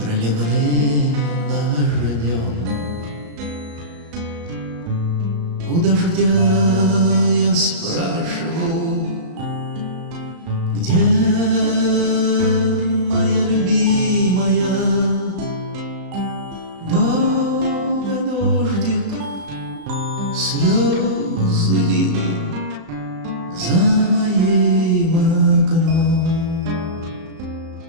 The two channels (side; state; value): left; late; 35 ms